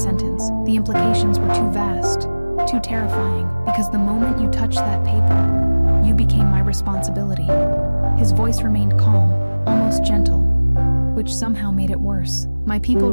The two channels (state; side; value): inverted; both; correlation -1.00